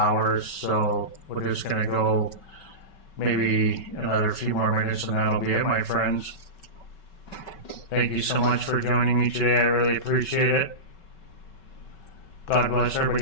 So we're just going to go maybe another few more minutes and that'll be it, my friends. Thank you so much for joining me today. I really appreciate it. God bless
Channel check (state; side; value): late; right; 5.3 ms